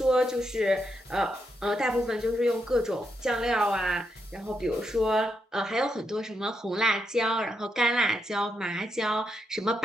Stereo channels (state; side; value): normal; both; correlation 0.81